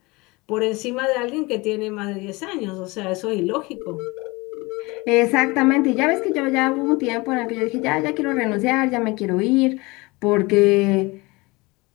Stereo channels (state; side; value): quieter; right; 23.9 dB